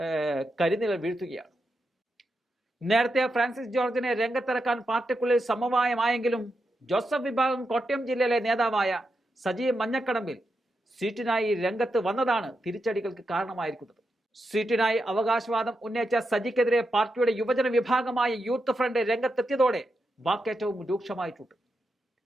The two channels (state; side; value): normal; both; correlation 0.86